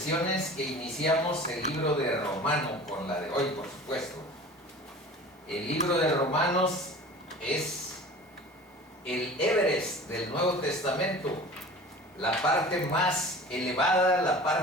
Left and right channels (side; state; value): both; normal; correlation 0.40